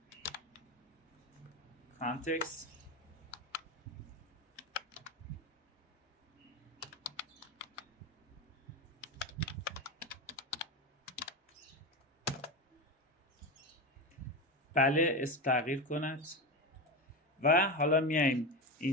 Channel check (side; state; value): both; normal; correlation 0.18